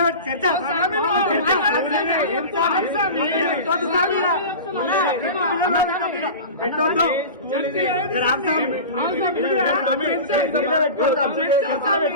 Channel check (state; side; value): inverted; both; correlation -0.31